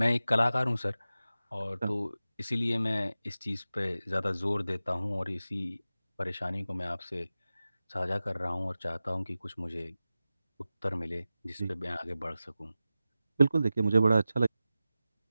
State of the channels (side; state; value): both; inverted; correlation -0.95